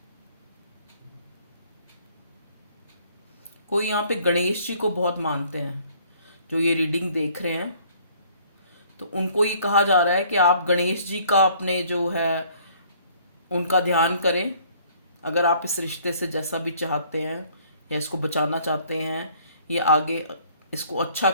कोई यहाँ पे गणेश जी को बहुत मानते हैं, जो ये रीडिंग देख रहे हैं, तो उनको ये कहा जा रहा है कि आप गणेश जी का अपने जो है उनका ध्यान करें। अगर आप इस रिश्ते से जैसा भी चाहते हैं, या इसको बचाना चाहते हैं, या आगे इसको अच्छा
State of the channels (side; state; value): both; inverted; correlation -0.59